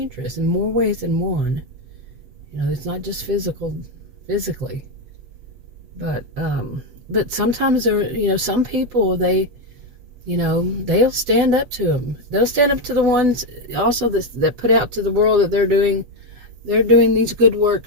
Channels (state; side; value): late; left; 8.0 ms